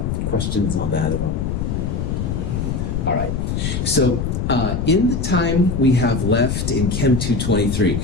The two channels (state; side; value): noise; left; rumble, 1 dB below the sound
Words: questions on that at all? All right. So, in the time we have left in Chem